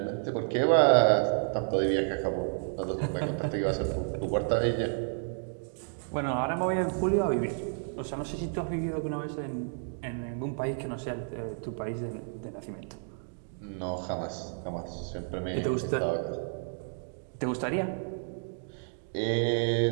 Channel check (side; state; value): left; silent; 57 dB below the other